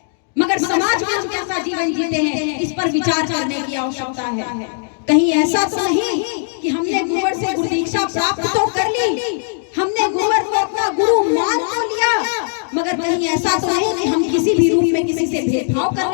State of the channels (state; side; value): silent; right; digital silence